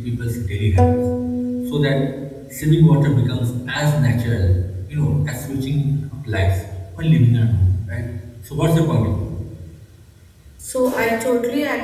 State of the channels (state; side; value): identical; both; correlation 1.00